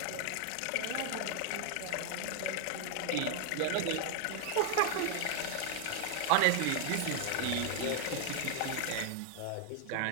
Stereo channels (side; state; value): both; different; correlation 0.00